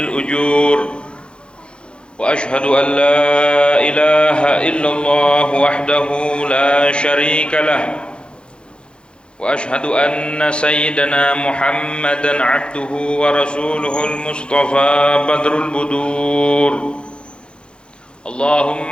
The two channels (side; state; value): right; late; 0.054 ms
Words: وأشهد أن لا إله إلا الله وحده لا شريك له وأشهد أن سيدنا محمدًا عبده ورسوله المصطفى بدر البدور